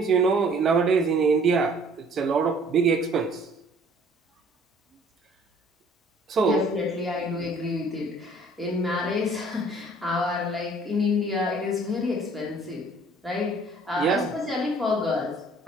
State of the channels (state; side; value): normal; both; correlation 0.55